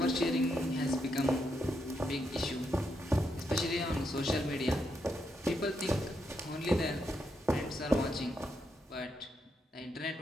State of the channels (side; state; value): both; normal; correlation 0.81